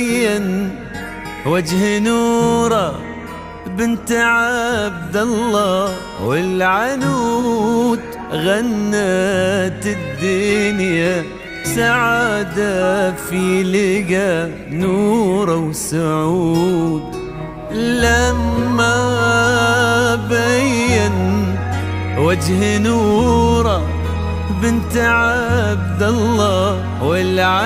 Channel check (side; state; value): both; identical; correlation 1.00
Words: وجه نوره بنت عبد الله والعنود غنت الدنيا سعادة في لقى نوره وسعود. لما بين وجه نوره بنت عبد الله